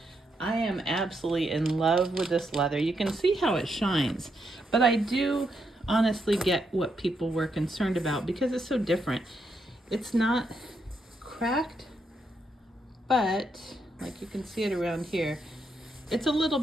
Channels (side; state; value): both; normal; correlation 0.80